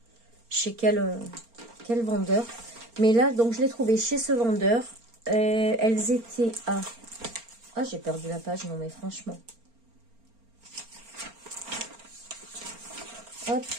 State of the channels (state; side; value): late; left; 4.3 ms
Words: chez quel vendeur. Mais là, donc, je l'ai trouvé chez ce vendeur. Elles étaient à... Ah, j'ai perdu la page, non mais franchement. Hop,